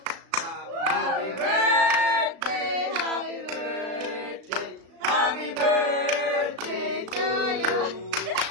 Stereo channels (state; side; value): late; left; 36 ms